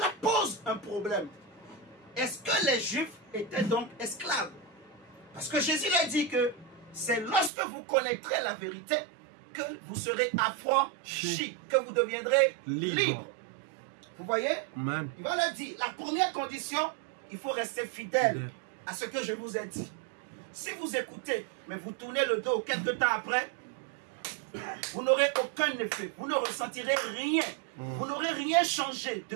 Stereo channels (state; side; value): drops out; left; at 7.5 s